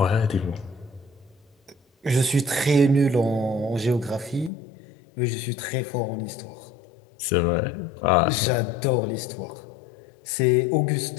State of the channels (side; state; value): right; drops out; at 4.5 s